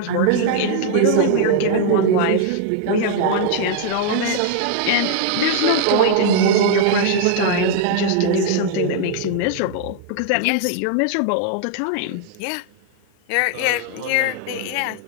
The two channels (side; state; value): both; different; correlation 0.00